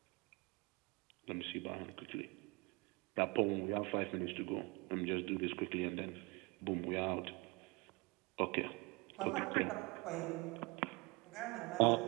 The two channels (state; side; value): quieter; left; 26.7 dB